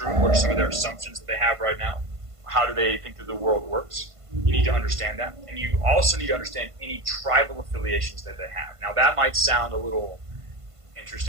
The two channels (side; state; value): left; late; 1.5 ms